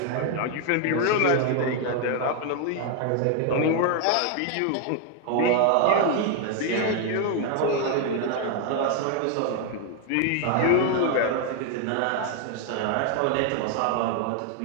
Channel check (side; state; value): both; different; correlation 0.01